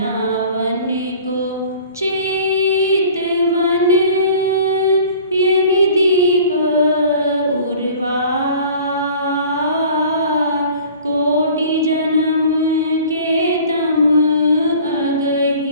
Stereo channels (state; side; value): inverted; both; correlation -0.47